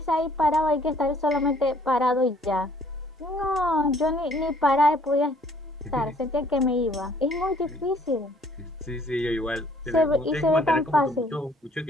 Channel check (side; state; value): both; normal; correlation 0.60